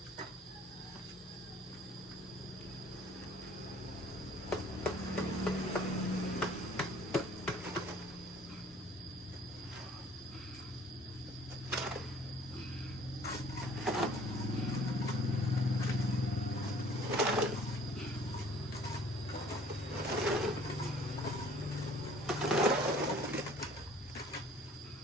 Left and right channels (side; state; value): both; normal; correlation 0.54